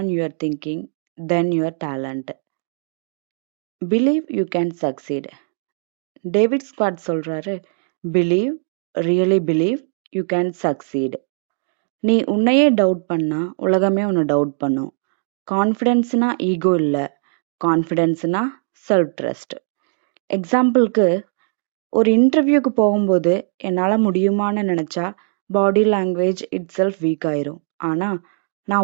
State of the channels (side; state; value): left; silent; digital silence